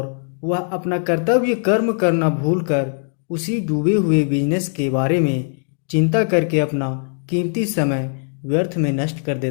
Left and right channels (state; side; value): silent; right; digital silence